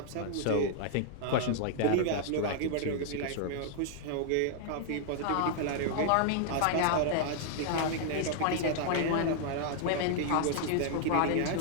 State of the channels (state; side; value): different; both; correlation -0.01